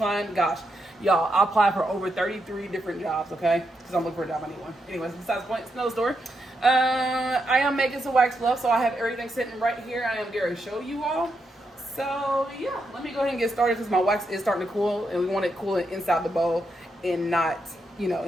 gosh, y'all, I applied for over 33 different jobs, okay? Because I'm looking for a job anyway. Anyways, besides the point, it's no story. I am making some wax fluff, so I have everything sitting right here. I am going to show you all. So yeah, let me go ahead and get started because my wax is starting to cool, and we want it cooling inside the bowl and not,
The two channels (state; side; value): normal; both; correlation 0.82